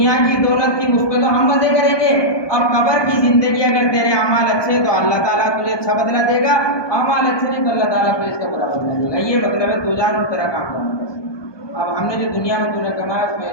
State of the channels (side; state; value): right; late; 1.2 ms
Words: کی دولت کی مجھ پہ تو ہم مزے کریں گے، اب قبر کی زندگی اگر تیرے اعمال اچھے تو اللہ تعالیٰ تجھے اچھا بدلہ دے گا، اعمال اچھے نہیں تو اللہ تعالیٰ تجھے اس کا برا بدلہ دے گا۔ یہ مطلب ہے تو جان اور تیرا کام جانے۔ اب ہم نے جو دنیا میں تو نے کمایا اس میں